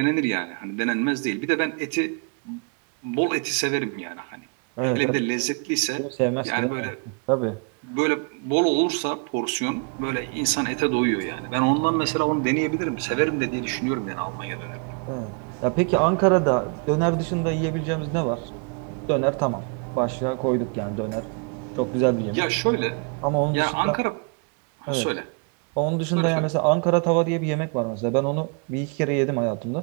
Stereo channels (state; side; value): quieter; left; 37.7 dB